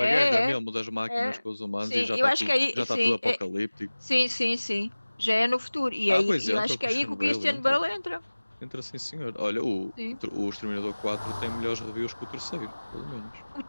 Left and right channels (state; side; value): inverted; both; correlation -1.00